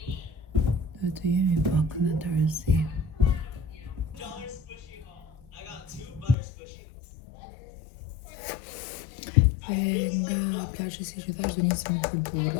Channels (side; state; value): right; drops out; at 6.4 s